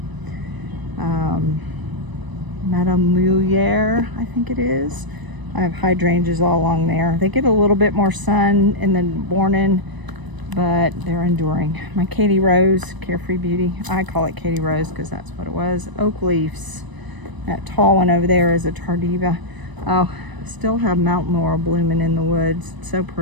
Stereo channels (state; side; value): late; left; 1.0 ms